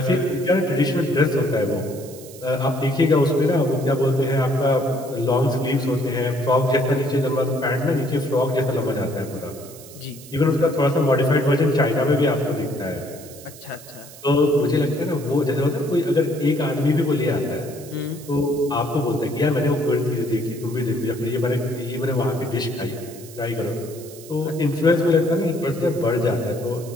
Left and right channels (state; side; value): noise; right; hiss, 18 dB below the sound